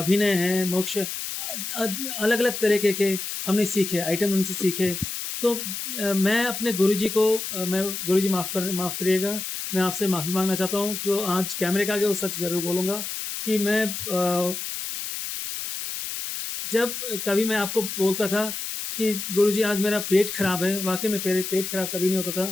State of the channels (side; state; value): left; noise; hiss, 5 dB below the sound